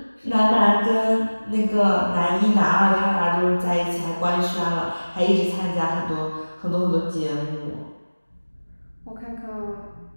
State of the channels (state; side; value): inverted; both; correlation -1.00